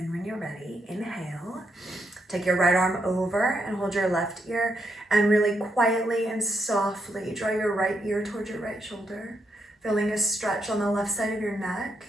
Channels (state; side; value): normal; both; correlation 0.80